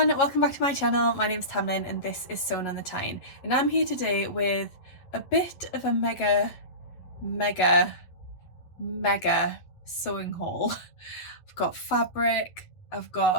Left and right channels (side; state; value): right; late; 11 ms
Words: welcome back to my channel. My name's Tamlyn and this is Sewn on the Tyne, and I'm here today with a bit of a mega sewing haul. I've got fabric, I've